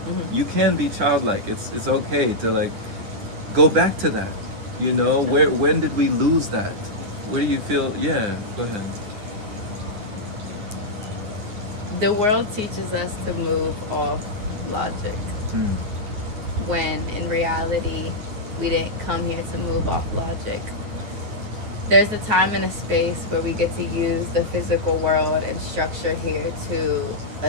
You can be childlike. It's okay to, like, go back to that, when did we lose that? Where do you feel? Yeah, go ahead. The world teaches us to move off logic. when in reality we didn't come here to move off logic. There's a time and a space where we get to use the physical world and structure here to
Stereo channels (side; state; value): left; late; 9.8 ms